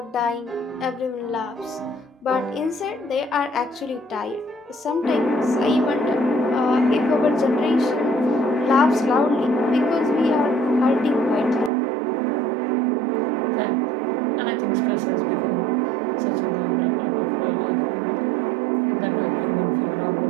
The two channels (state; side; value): drops out; left; at 11.7 s